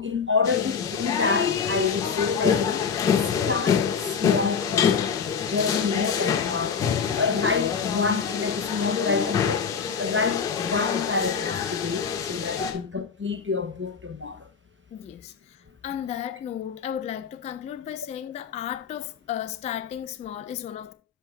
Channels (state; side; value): quieter; right; 6.1 dB